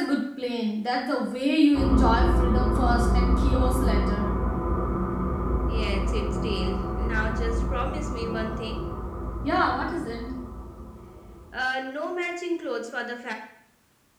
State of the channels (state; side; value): identical; both; correlation 1.00